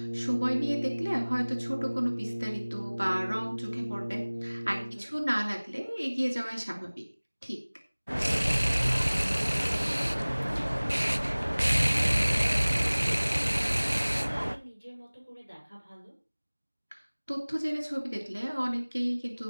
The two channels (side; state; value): both; inverted; correlation -1.00